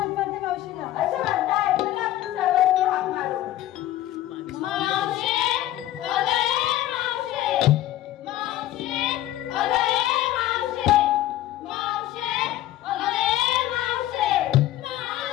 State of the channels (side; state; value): right; quieter; 14.0 dB